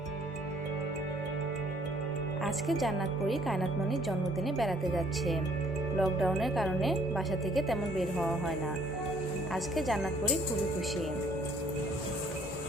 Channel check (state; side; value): normal; both; correlation 0.62